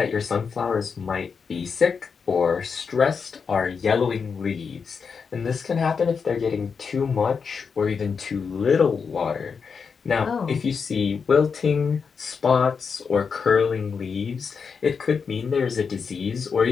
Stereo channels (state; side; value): quieter; right; 5.8 dB